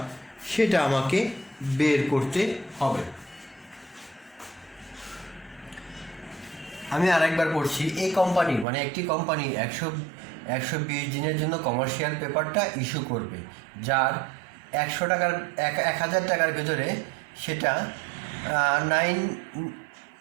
সেটা আমাকে বের করতে হবে। আমি আরেকবার পড়ছি। এই কোম্পানি মানে একটি কোম্পানি 120 দিনের জন্য কমার্শিয়াল পেপারটা ইস্যু করবে, যার 1000 টাকার ভেতরে সেটা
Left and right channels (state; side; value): drops out; left; at 8.7 s